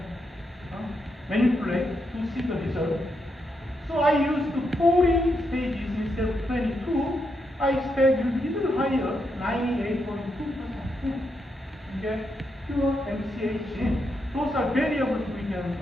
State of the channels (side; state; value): both; normal; correlation 0.82